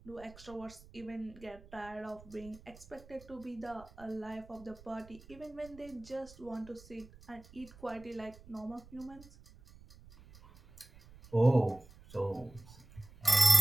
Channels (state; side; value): noise; right; rumble, 21 dB below the sound